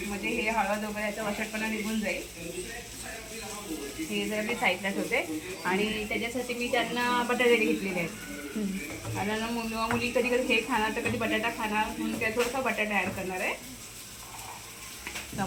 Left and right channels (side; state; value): both; identical; correlation 1.00